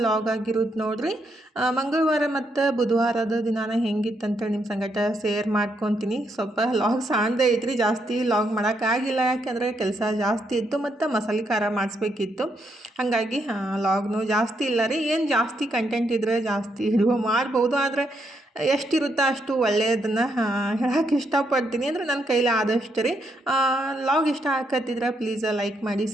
ಲಾಗ್ ಆಗಿರೋದು ನೋಡ್ರಿ. ಮಂಗಳವಾರ ಮತ್ತು ಬುಧವಾರದ ದಿನಾನ ಹೆಂಗಿತ್ತಂತ ನಿಮ್ಮ ಸಂಗಟ ಶೇರ್ ಮಾಡ್ಕೊತೀನಿ. ಸ್ವಲ್ಪ ಲಾಗ್ ಸಾಣದೇ ಐತ್ರಿ, ಜಾಸ್ತಿ ಲಾಗ್ ಮಾಡೋಕ್ಕಾಗಿಲ್ಲ. ಯಾಕೆಂದರೆ ಕೆಲಸ ಜಾಸ್ತಿ ಇತ್ತು ಮತ್ತು ಮಸಾಲೆ ಖಾರ ಮಾಡಿಸ್ಬೇಕಿತ್ತು. ಹಾಗಾಗಿ ಲಾಗ್ನು ಜಾಸ್ತಿ ಇಲ್ಲ ರೀ. ಏನು ಜಾಸ್ತಿ ಕಂಟೆಂಟ್ ಇದ್ದರೆ ಜಾಸ್ತಿ ಹಿಡಿಯೋ ಮಾಡ್ಬೋದು, ಆದರೆ ಎಷ್ಟಿರುತ್ತೋ ಅಷ್ಟು ಒಳ್ಳೆಯದನ್ನು ಹೇಳೋಕ್ಕೆ ಇಷ್ಟಪಡ್ತೀನಿ. ಅಂದರೆ ನನ್ನ ಕೈಲಿ ಆದಷ್ಟು ರೀ. ಲಾಗ್ ಇಷ್ಟ ಆಗತ್ತಿದ್ರೆ ಪ್ಲೀಸ್ ಲೈಕ್ ಮಾಡಿ,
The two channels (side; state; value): both; normal; correlation 0.77